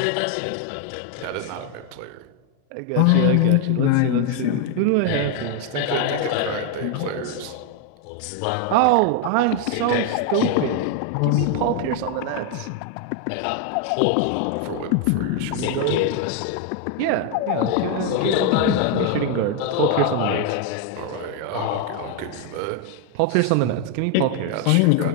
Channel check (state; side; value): different; both; correlation 0.01